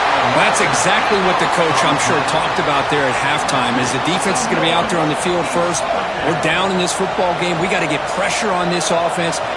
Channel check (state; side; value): identical; both; correlation 1.00